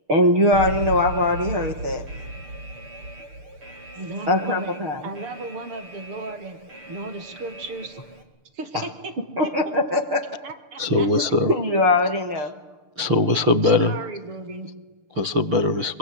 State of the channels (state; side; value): late; left; 6.7 ms